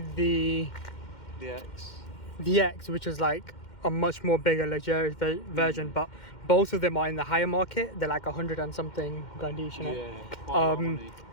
the X, which is like a much more bigger luxurious version, but both of them are in the higher market. They're like 100 and something grand each, innit? Yeah, quite a lot of money.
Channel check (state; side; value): late; right; 2.1 ms